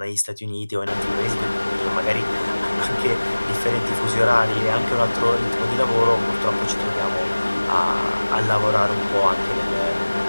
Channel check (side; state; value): both; inverted; correlation -1.00